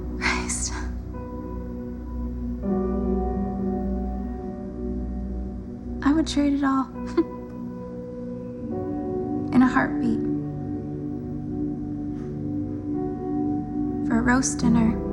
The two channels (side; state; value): both; identical; correlation 1.00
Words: Christ. I would trade it all. In a heartbeat. For a roast dinner,